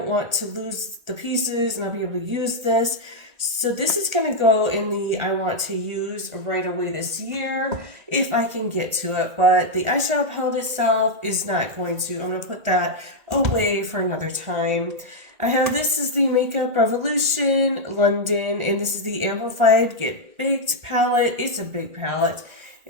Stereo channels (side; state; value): left; late; 1.8 ms